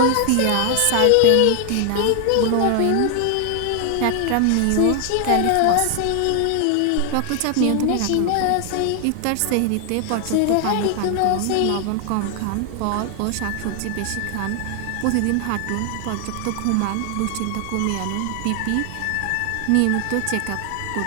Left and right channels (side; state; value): both; different; correlation 0.00